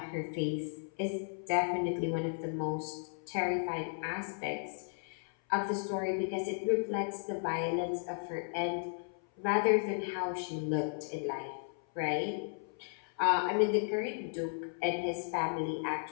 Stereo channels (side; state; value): right; silent; 55 dB below the other